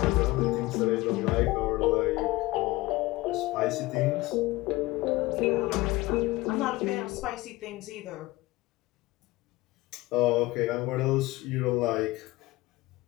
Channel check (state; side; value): quieter; right; 19.8 dB